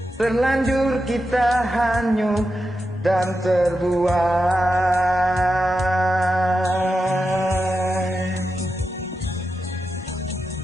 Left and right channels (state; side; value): normal; both; correlation 0.89